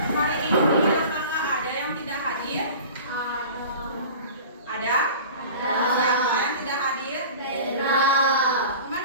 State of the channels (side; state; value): both; inverted; correlation -0.39